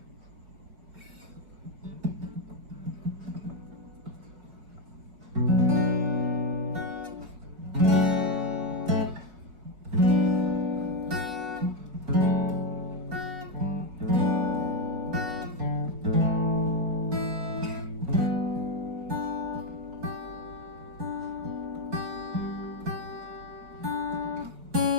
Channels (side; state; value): left; late; 5.5 ms